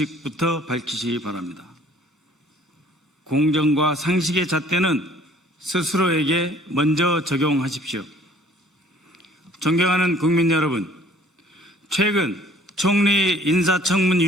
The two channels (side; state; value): both; normal; correlation 0.56